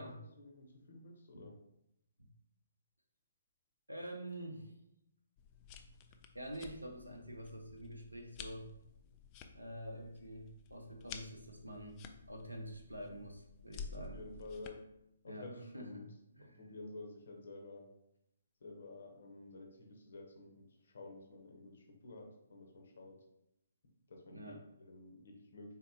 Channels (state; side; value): inverted; both; correlation -0.66